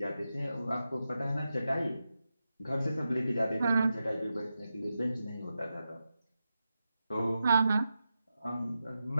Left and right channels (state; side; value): inverted; both; correlation -0.90